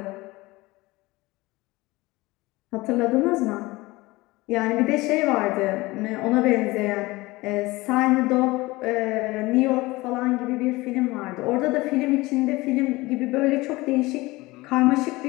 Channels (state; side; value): quieter; right; 21.0 dB